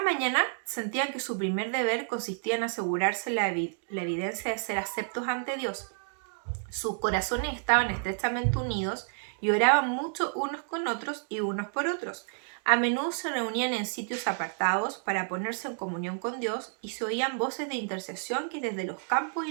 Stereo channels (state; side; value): silent; left; digital silence